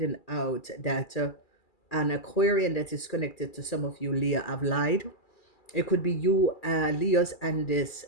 out that an Aquarian that is connected to some of you Leo have lied. It could be you, Leos, and this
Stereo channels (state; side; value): late; right; 2.3 ms